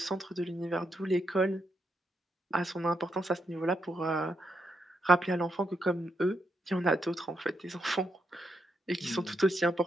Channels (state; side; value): normal; both; correlation 0.81